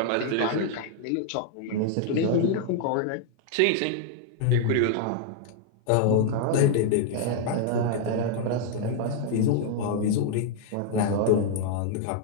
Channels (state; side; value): different; both; correlation 0.00